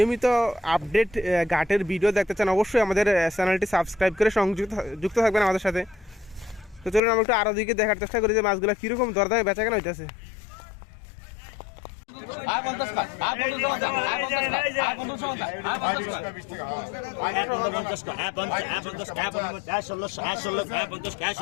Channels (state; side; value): drops out; right; at 7.0 s